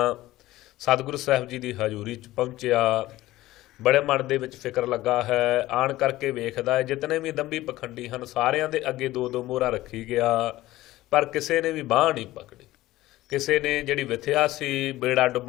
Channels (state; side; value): quieter; right; 16.7 dB